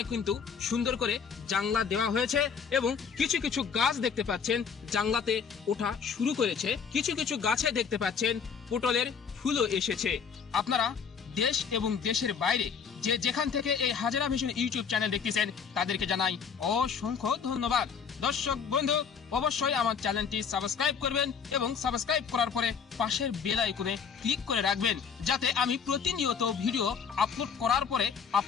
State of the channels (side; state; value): right; quieter; 6.5 dB